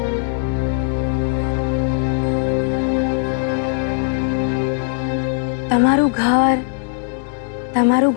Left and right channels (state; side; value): silent; right; 63 dB below the other